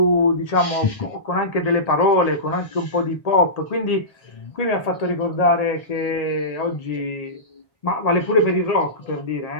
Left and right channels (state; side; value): late; right; 1.8 ms